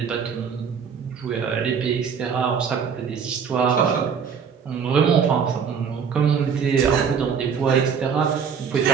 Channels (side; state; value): left; quieter; 6.7 dB